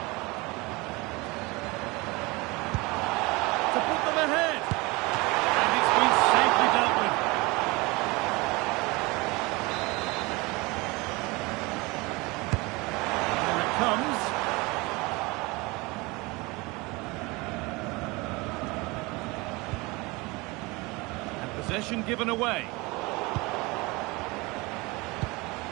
To put them ahead. And it's been safely dealt with. Here it comes. And possession given away.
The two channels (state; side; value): quieter; left; 24.5 dB